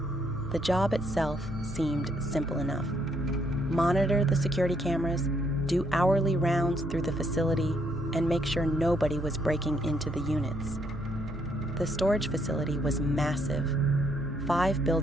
The job itself seemed simple enough. Monitor the security cameras, do hourly rounds through the facility, and make sure nobody was breaking into the units. The storage facility was massive, 5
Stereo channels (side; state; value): right; noise; hum, 13 dB below the sound